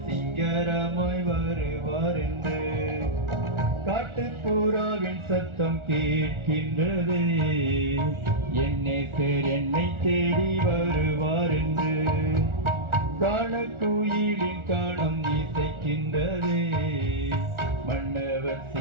சிங்கரமாய் வருவார் என்று. காட்டுப்புறாவின் சத்தம் கேட்கின்றதே, என் நேசர் என்னை தேடி வருவார் என்று. காண கோயிலின் காணம் இசைக்கின்றதே, மன்னவர்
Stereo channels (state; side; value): late; left; 1.4 ms